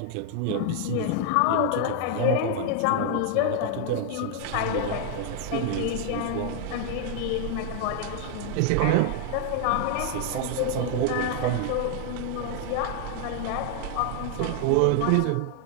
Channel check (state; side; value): different; both; correlation 0.00